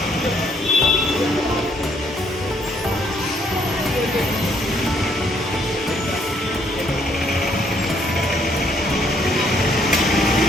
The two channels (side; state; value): both; normal; correlation 0.68